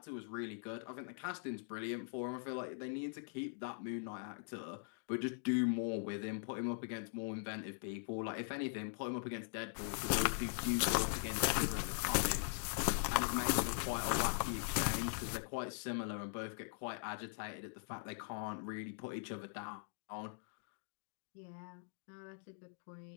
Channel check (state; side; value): silent; right; digital silence